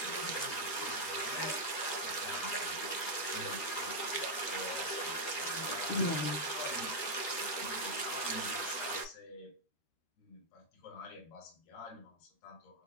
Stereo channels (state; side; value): late; right; 13 ms